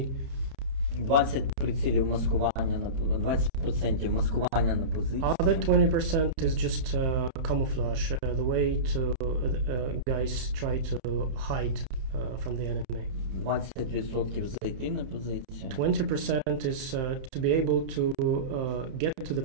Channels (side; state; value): left; late; 31 ms